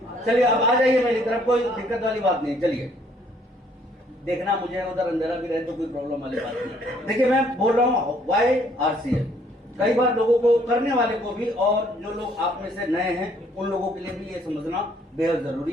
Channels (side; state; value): both; normal; correlation 0.64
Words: चलिए अब आ जाइए मेरी तरफ, कोई दिक्कत वाली बात नहीं। चलिए, देखना मुझे उधर अंधेरा भी रहे तो कोई प्रॉब्लम वाली बात नहीं। देखिए, मैं बोल रहा हूँ YRCL, कई बार लोगों को, करने वाले को भी, और जो लोग आप में से नए हैं उन लोगों के लिए भी ये समझना बेहद